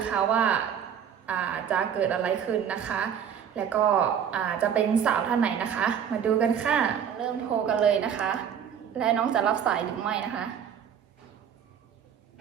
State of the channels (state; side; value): quieter; left; 8.3 dB